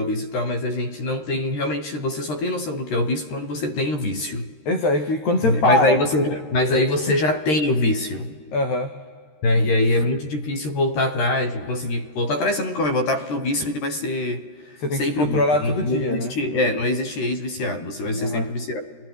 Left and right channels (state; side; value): late; right; 13 ms